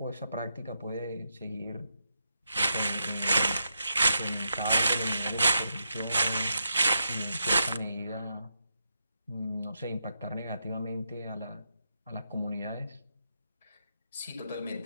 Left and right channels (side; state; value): both; inverted; correlation -0.84